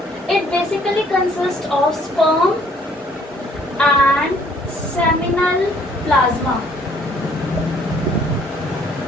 It basically consists of sperm and seminal plasma.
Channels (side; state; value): both; normal; correlation 0.61